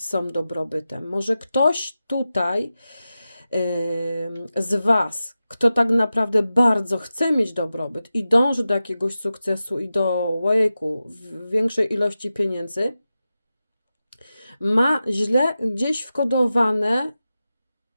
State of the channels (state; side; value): inverted; both; correlation -0.93